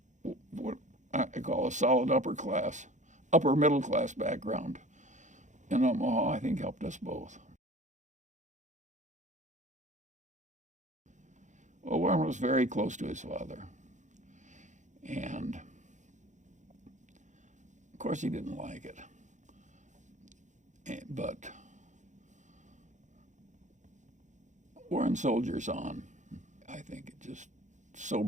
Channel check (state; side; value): late; left; 0.35 ms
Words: what I call a solid upper middle class background in Omaha, I think helped us both. Well, Warren was very close to his father. And of course he didn't like it. But Warren soldiers on. I think it just